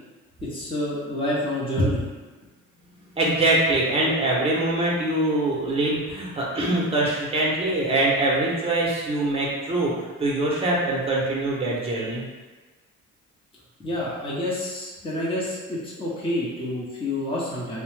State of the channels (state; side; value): normal; both; correlation 0.23